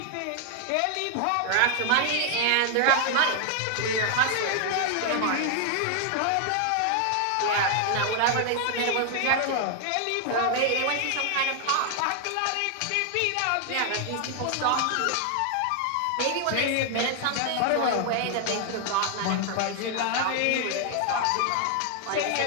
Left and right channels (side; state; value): both; different; correlation 0.00